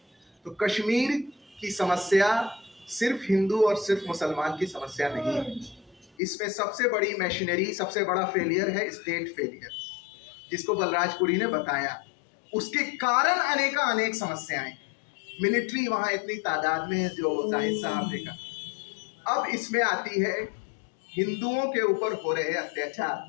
तो कश्मीर की समस्या सिर्फ हिंदू और सिर्फ मुसलमान की समस्या नहीं है। इसमें सबसे बड़ी मशीनरी, सबसे बड़ा फेलियर है स्टेट फेलियर, जिसको बलराजपुरी ने बताया। उसके कारण अनेक समस्याएं, मिलिट्री वहां इतनी तादाद में है जो जाहिद साहब ने कहा। अब इसमें आती है हिंदुओं के ऊपर हो रहे अत्याचार।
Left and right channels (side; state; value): right; drops out; at 6.1 s